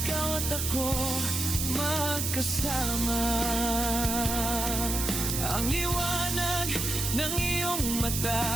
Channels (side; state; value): right; noise; hiss, 2 dB below the sound